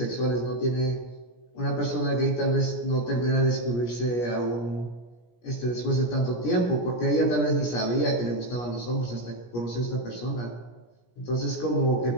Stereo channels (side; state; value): right; late; 17 ms